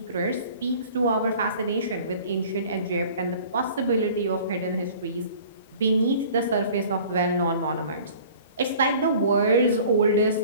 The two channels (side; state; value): both; inverted; correlation -0.47